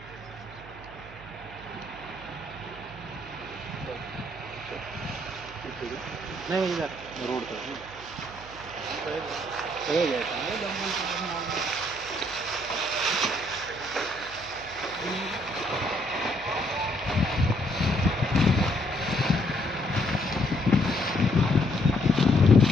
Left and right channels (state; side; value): noise; right; hum, 18 dB below the sound